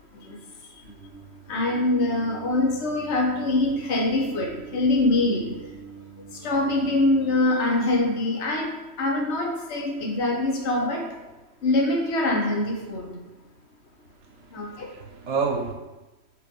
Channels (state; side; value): late; right; 3.2 ms